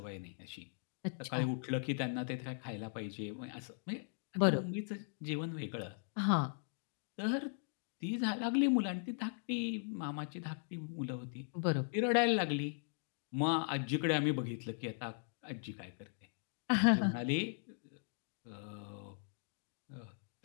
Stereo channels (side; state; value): right; silent; digital silence